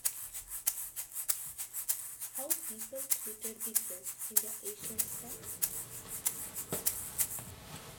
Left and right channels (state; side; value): identical; both; correlation 1.00